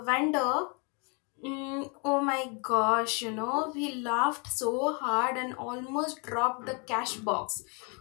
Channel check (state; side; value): quieter; right; 33.9 dB